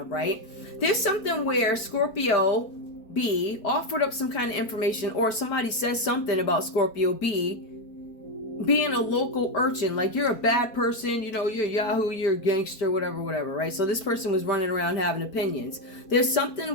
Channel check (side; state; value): right; late; 4.6 ms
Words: right? There's something where Scorpio B offered up some kind of information, or somebody says something about Scorpio B being a local urchin, like you're a bad person, you're a Yahoo, you're a gangster, whatever, right? So this person was running around having opinions. There's